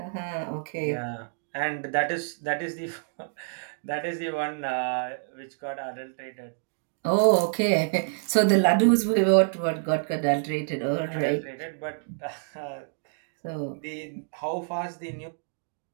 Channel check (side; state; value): left; silent; 60 dB below the other